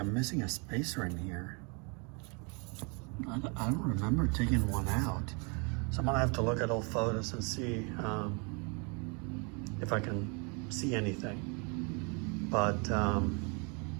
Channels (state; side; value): quieter; left; 33.3 dB